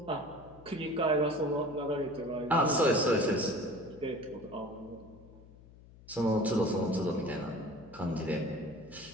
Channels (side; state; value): left; noise; hum, 21 dB below the sound